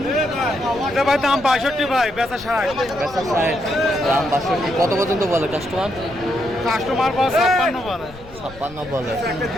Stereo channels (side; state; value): left; noise; rumble, 20 dB below the sound